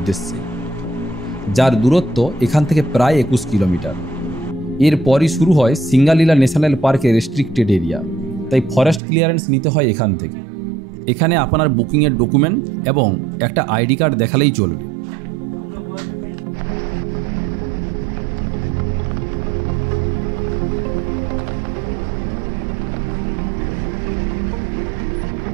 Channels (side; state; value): left; drops out; at 9.0 s